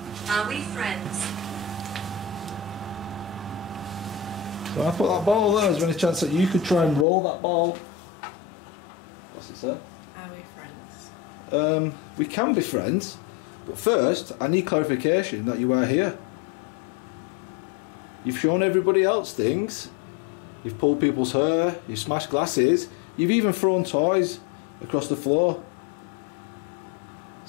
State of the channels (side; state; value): right; drops out; at 7.1 s